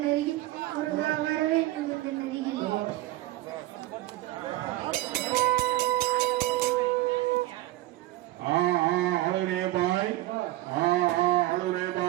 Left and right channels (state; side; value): quieter; left; 17.2 dB